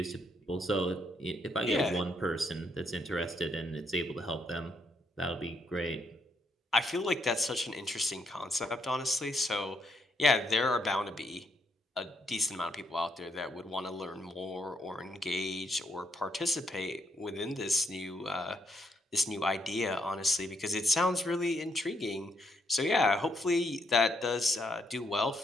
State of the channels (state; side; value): normal; both; correlation 0.75